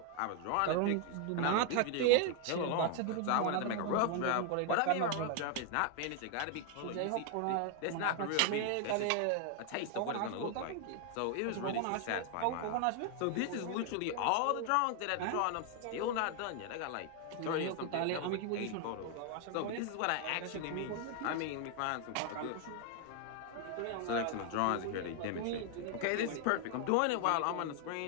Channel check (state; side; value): different; both; correlation 0.00